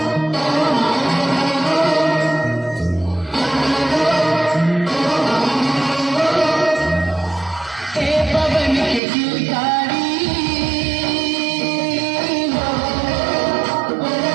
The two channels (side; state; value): left; drops out; at 9.0 s